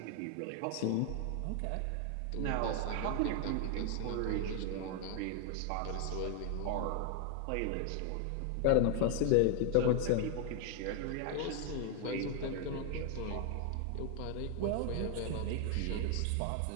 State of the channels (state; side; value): different; both; correlation 0.00